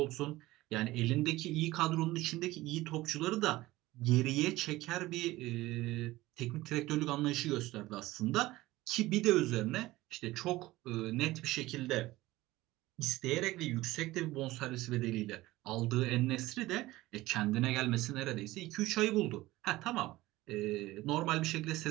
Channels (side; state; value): left; quieter; 18.1 dB